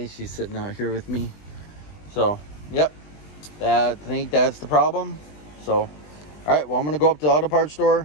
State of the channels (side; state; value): right; late; 20 ms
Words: She's sitting out here with me. So, yep. I think that's the problem. So, all right. Well, I'm going to go up to the auto parts